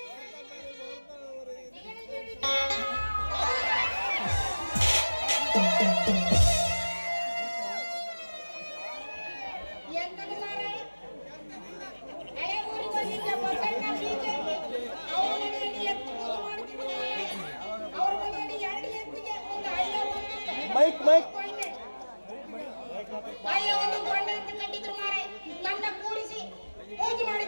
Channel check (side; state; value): both; inverted; correlation -1.00